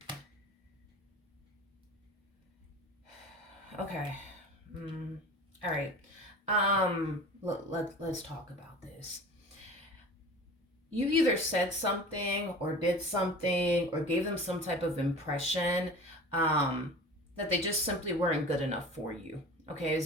Okay. All right. Let's talk about this. You either said something or did something or gave them some type of impression that they just simply weren't good enough for you. Okay,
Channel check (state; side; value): normal; both; correlation 0.38